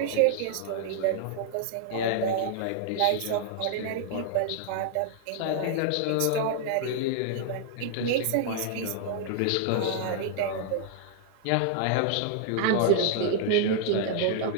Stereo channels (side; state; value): both; different; correlation 0.00